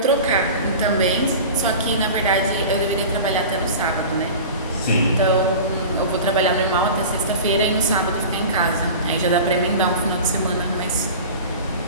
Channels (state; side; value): inverted; both; correlation -0.35